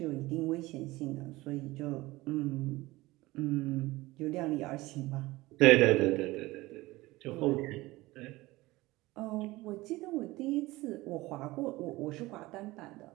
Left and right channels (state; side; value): quieter; left; 19.7 dB